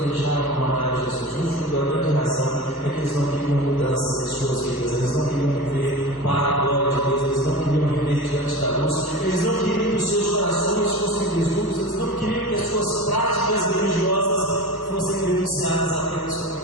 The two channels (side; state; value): right; late; 1.2 ms